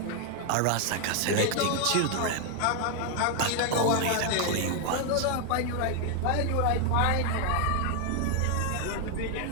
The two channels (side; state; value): both; different; correlation 0.01